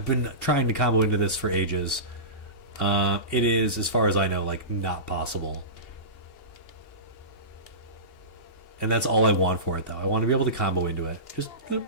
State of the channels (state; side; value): late; right; 2.7 ms